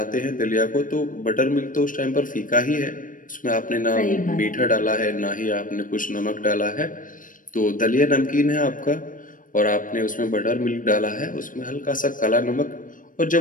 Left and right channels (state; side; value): late; right; 0.39 ms